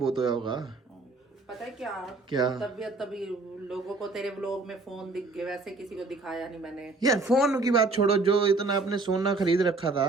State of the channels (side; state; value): left; quieter; 3.6 dB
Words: होया होगा। पता है क्या? क्या? तबीयत तभी लोगों को तेरे व्लॉग में फोन दिख गए, वैसे किसी को दिखाया नहीं मैंने। यार फोन की बात छोड़ो, जो इतना आपने सोना खरीद रखा